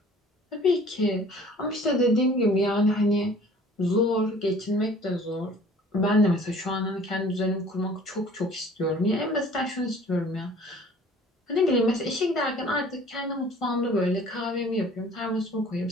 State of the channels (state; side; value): normal; both; correlation 0.50